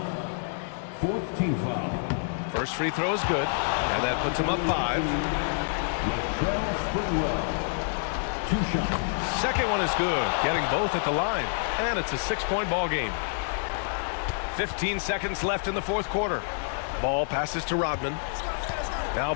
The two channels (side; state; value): right; silent; digital silence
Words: 4th team foul. First free throw is good, and that puts him up 5. Sprewell. 2 shots. Second one is good, getting both at the line, and it's a 6-point ball game. 15 seconds left in the 4th quarter. Ball passes to Rodman. Now